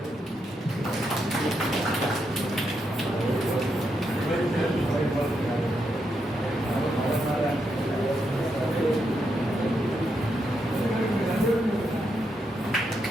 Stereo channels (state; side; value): normal; both; correlation 0.82